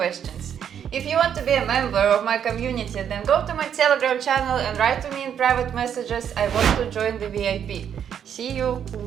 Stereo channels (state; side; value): quieter; left; 8.7 dB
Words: If you want to be a member of my community, then go to my Telegram channel and write to me in private messages, I want to join the VIP. See you!